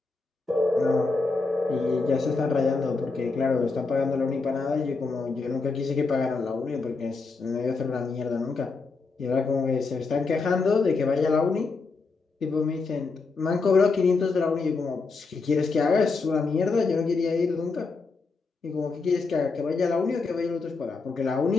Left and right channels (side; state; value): right; quieter; 4.2 dB